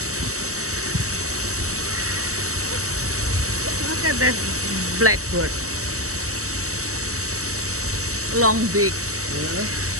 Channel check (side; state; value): left; late; 0.65 ms